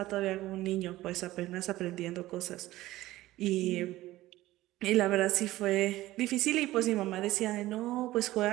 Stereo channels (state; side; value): quieter; left; 16.6 dB